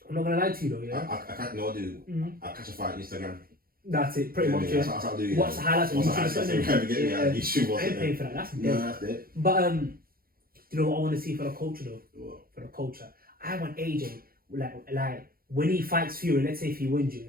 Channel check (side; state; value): left; late; 0.43 ms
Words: I'm not gonna lie to you though, yeah. I can't know, dude. I catch a fight on Instagram. That's it, pretty much. That's what I'll do. What's the highlights on YouTube? I ain't paying for that. That's dead. No, that's dead. But you know what I want to see for the culture though? What? For the culture, I want AJ like when he fights Fury. Let's say if he wins you,